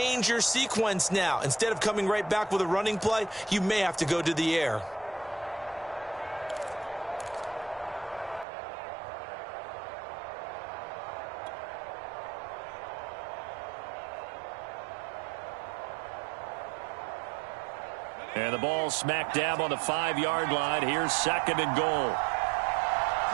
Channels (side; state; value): left; drops out; at 8.5 s